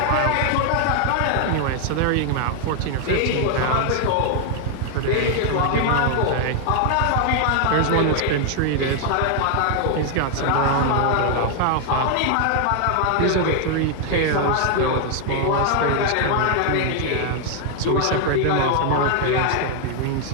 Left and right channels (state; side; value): different; both; correlation 0.00